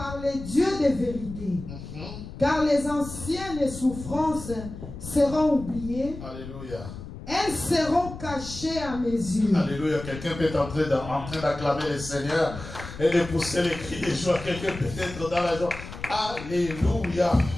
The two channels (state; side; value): noise; left; rumble, 11 dB below the sound